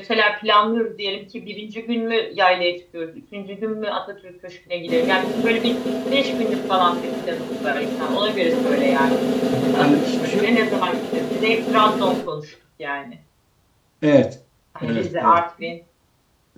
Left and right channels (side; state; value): both; identical; correlation 1.00